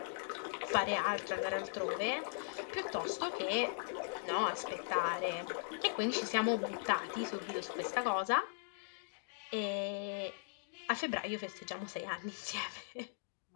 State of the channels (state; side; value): silent; right; digital silence